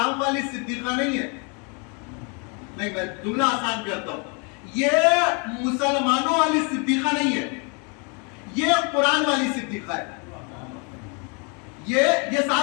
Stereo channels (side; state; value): right; quieter; 34.7 dB